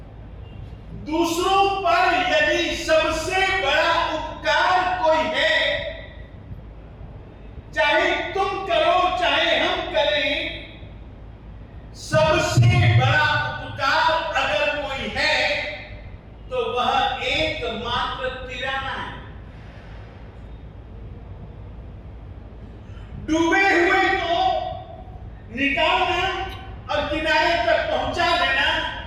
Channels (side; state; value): both; identical; correlation 1.00